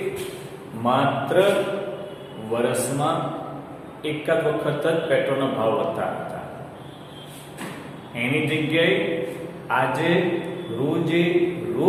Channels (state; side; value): identical; both; correlation 1.00